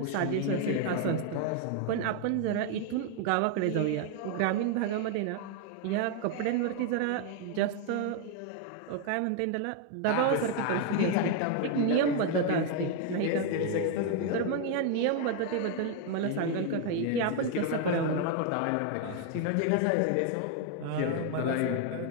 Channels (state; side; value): different; both; correlation 0.01